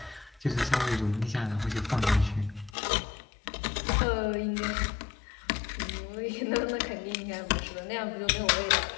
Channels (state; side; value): drops out; right; at 2.8 s